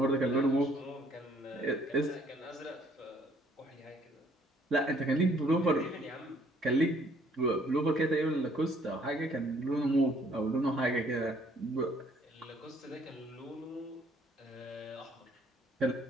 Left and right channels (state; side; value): normal; both; correlation 0.62